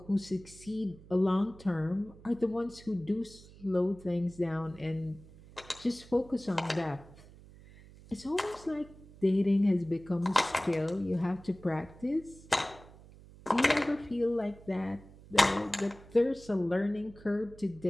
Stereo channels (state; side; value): noise; right; hum, 21 dB below the sound